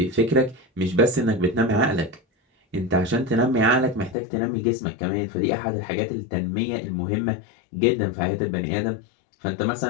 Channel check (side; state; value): right; drops out; at 4.2 s